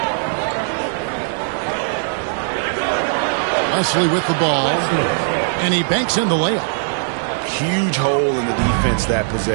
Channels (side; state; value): left; silent; digital silence